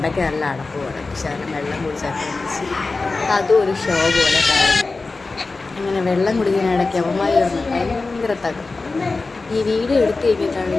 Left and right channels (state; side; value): quieter; right; 3.7 dB